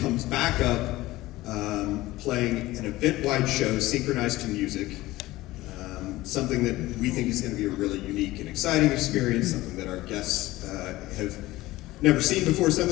comes back up, playing an event-wide show synchronized to music. Something that we think is going to be a really unique and exciting experience, something that our guests have never seen before,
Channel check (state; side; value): quieter; right; 17.9 dB